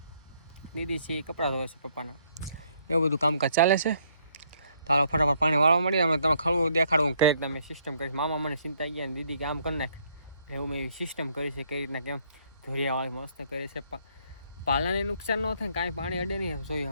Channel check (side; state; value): both; inverted; correlation -0.68